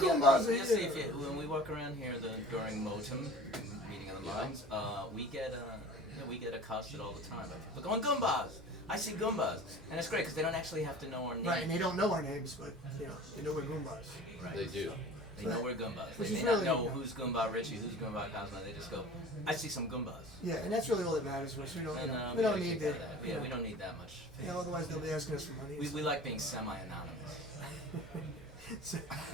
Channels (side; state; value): both; normal; correlation 0.41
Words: Goombas you'll are see here. when we walk around here during M.O.T.M, meeting of the minds, we get accosted all the time by people going, Goombas! I see Goombas! And it's great because they don't actually have to know our name. Right, and they don't know our names, but they know we're Goombas. Right. They do. They know we're Goombas. Which They is may not really- know who's Goomba Richie, who's Goomba Cosmo. They just go, I see some Goombas. Yeah, and that's really all that matters to us. We don't, And, we don't gotta need kick to. out of that. Yeah, we don't need that much. Otherwise they'll be asking us for money. We like being semi-anonymous. So-